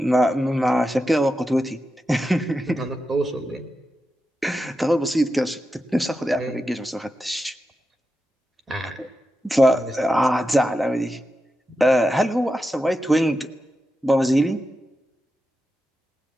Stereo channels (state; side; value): normal; both; correlation 0.90